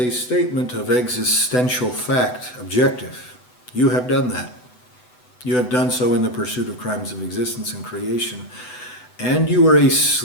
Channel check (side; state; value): right; late; 8.0 ms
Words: statement of existential fact, objective. You have done that. You have done so in the pursuit of crimes of existence and creation. And you are a